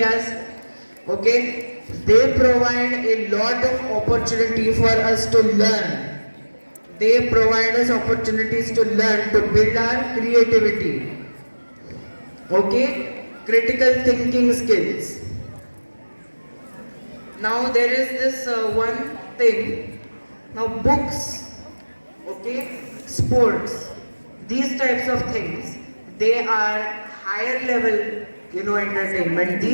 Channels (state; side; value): inverted; both; correlation -1.00